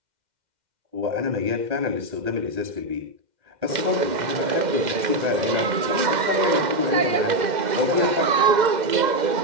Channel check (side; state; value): left; late; 2.1 ms